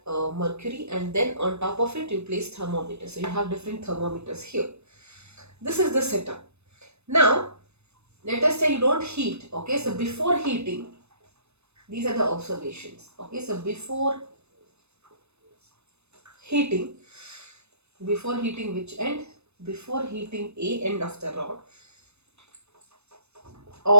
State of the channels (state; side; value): late; left; 0.81 ms